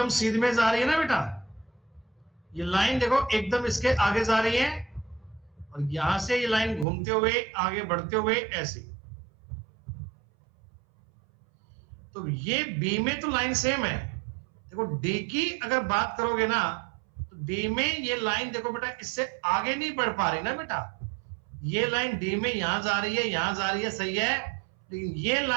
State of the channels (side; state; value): left; drops out; at 6.9 s